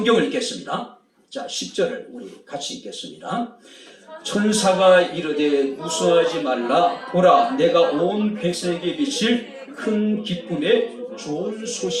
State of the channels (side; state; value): both; identical; correlation 1.00